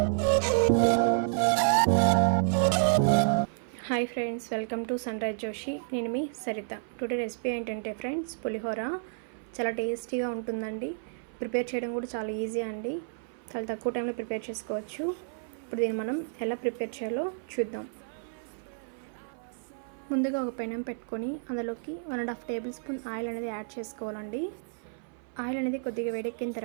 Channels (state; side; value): silent; left; 55 dB below the other